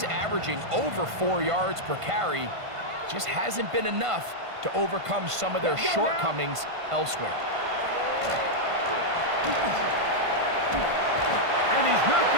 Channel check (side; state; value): left; late; 1.5 ms